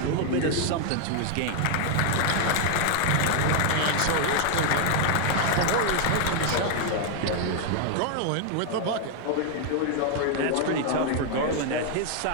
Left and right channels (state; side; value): different; both; correlation 0.00